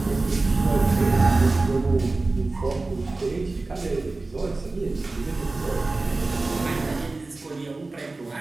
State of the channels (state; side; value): quieter; left; 3.3 dB